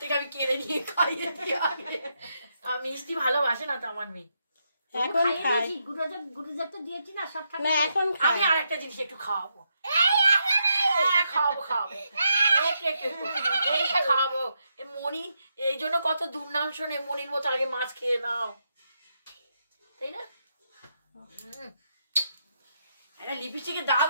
আমি কেড়ে নিয়ে খাইয়ে দিই আগে। আমি মিষ্টি ভালোবাসে না তো আমার মেয়ে। এখন খাই গুরুদেব তো দিয়েছি না সব না এখন খাই আমি আরেকটা জিনিস একটু খাওয়াবো, খাওয়াবো এইটা খাওয়াবো। মনি এই জন্য কত দুর্নাম শোনে, মনির মতো আগে মাছ খেয়ে নাও, তাই না? একটা লিপস্টিকের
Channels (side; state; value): both; inverted; correlation -0.81